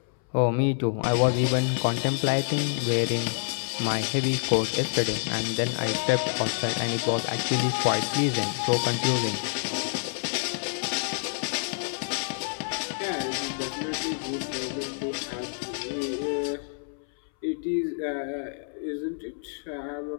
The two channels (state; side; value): silent; right; 60 dB below the other